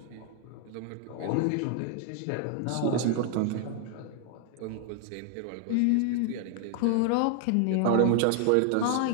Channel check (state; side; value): different; both; correlation 0.00